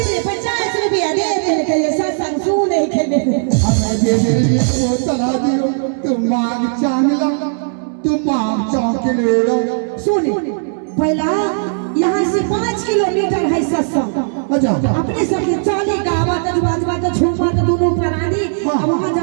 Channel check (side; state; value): left; silent; digital silence